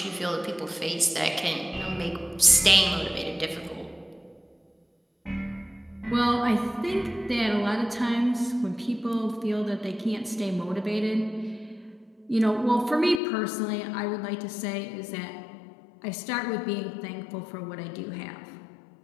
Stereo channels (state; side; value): drops out; right; at 13.2 s